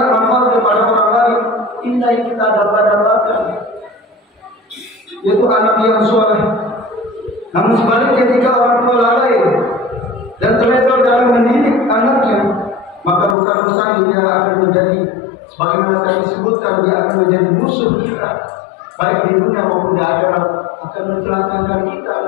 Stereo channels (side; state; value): right; drops out; at 13.4 s